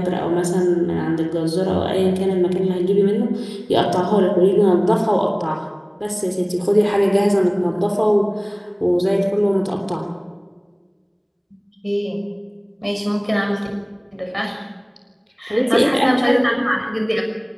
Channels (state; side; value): identical; both; correlation 1.00